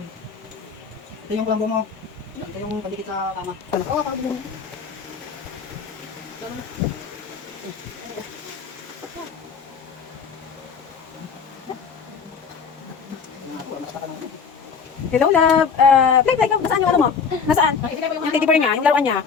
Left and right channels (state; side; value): quieter; right; 5.9 dB